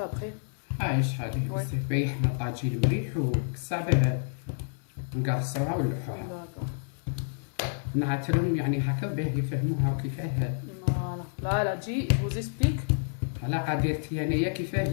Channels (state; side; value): silent; right; 57 dB below the other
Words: après. شحال Ouais. بزاف باين حنا طاجين مليح وكسابه نقرصوها ونلوحوها D'accord. نعتلهم يعني هكا باه يفهموها كيفاه Voilà. Là, elle a dit, je vous explique. على قدرتي انايا